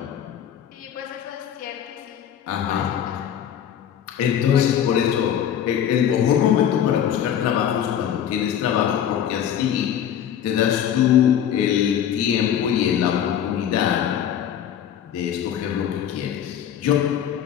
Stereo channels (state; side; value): quieter; right; 9.6 dB